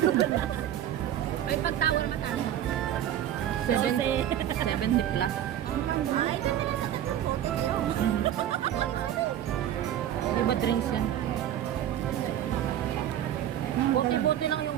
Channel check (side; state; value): left; quieter; 11.2 dB